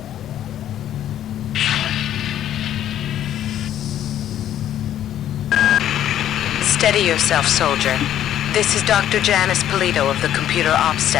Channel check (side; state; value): right; quieter; 11.2 dB